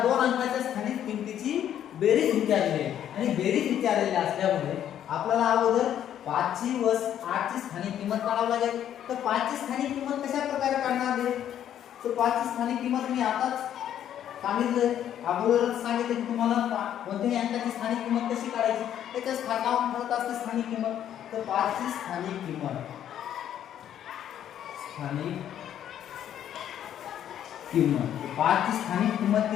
2 अंकाच्या स्थानिक किंमतीची बेरीज विचारलेली आहे आणि बेरीज विचारलेली असल्यामुळे आपल्याला अगोदर 5 ची व 8 ची स्थानिक किंमत काढावी लागेल। तर 5 ची स्थानिक किंमत कशा प्रकारे काढणार आहे, तर 5 ची स्थानिक किंमत मी आताच सांगितलं, अगोदरच सांगितलं की तुम्हाला कोणत्याही अंकाची स्थानिक किंमत कशी काढायची, त्याच्या स्थानावर ठरत असते स्थानिक किंमत। तर 5 ची स्थानिक किंमत 5 ची स्थानिक किंमत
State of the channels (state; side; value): quieter; right; 10.4 dB